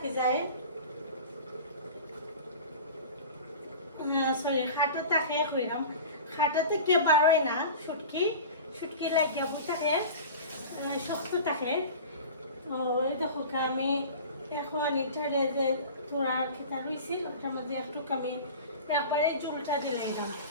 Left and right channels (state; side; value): inverted; both; correlation -0.36